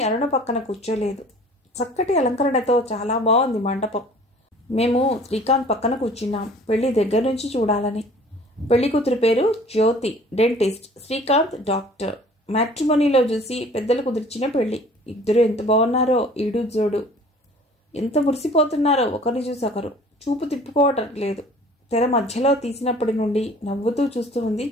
అరుణ పక్కన కూర్చోలేదు. చక్కటి అలంకరణతో చాలా బాగుంది మండపం. మేము శ్రీకాంత్ పక్కన కూర్చున్నాం, పెళ్లి దగ్గర నుంచి చూడాలని. పెళ్లి కూతురు పేరు జ్యోతి, డెంటిస్ట్. శ్రీకాంత్ డాక్టర్. మ్యాట్రిమోనీలో చూసి పెద్దలు కుదిర్చిన పెళ్లి. ఇద్దరు ఎంత బాగున్నారో, ఈడు జోడు. ఎంత మురిసిపోతున్నారో ఒకరిని చూసి ఒకరు. చూపు తిప్పుకోవటం లేదు. తెర మధ్యలో తీసినప్పటి నుండి నవ్వుతూ చూస్తూ ఉంది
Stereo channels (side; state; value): both; normal; correlation 0.49